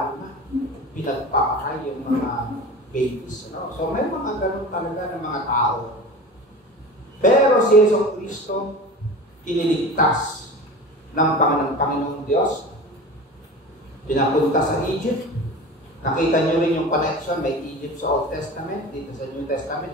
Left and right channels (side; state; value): both; normal; correlation 0.34